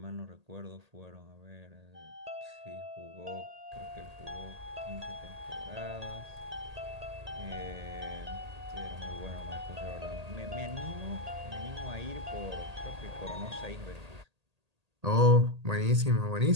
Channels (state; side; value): late; left; 1.8 ms